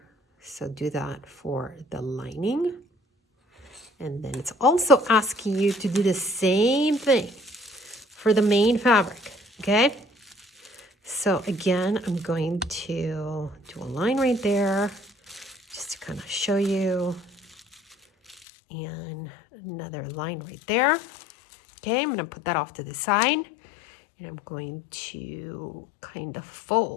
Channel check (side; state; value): right; drops out; at 18.4 s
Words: So do that for the lining. And then it's also asking you to do the same thing for the main fabric, okay? So again, I'm going to do a line right there just to kind of show you. And another line right there. Okay, I'm going to put that off to the side. And I'm going to kind of